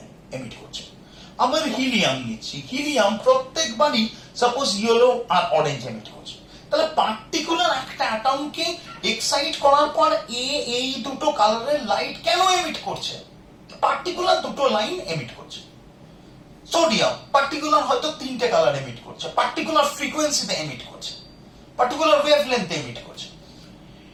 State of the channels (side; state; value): both; identical; correlation 1.00